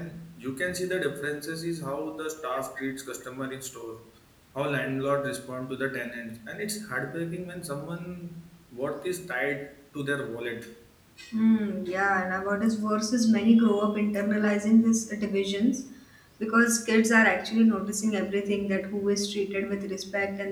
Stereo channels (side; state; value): both; identical; correlation 1.00